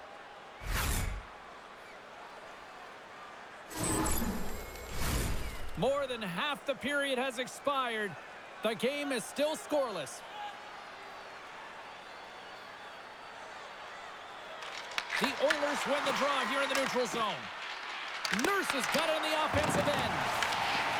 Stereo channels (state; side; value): identical; both; correlation 1.00